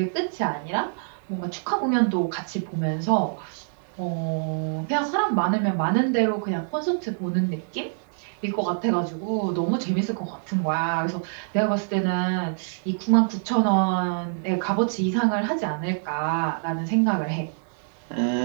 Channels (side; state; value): left; silent; digital silence